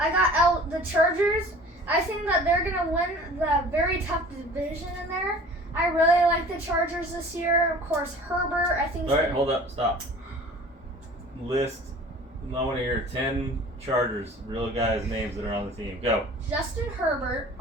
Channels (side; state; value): both; normal; correlation 0.45